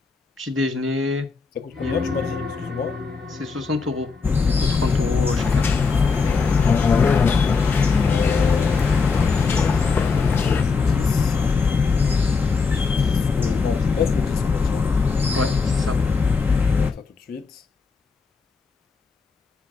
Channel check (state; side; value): quieter; right; 4.8 dB